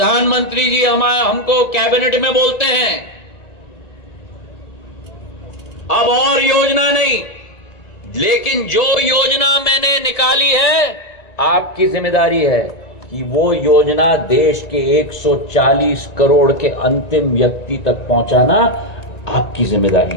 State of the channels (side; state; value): right; late; 1.9 ms